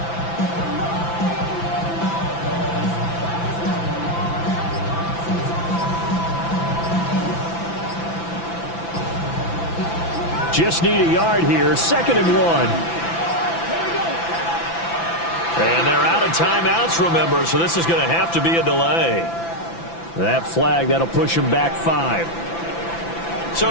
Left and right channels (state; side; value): late; right; 5.9 ms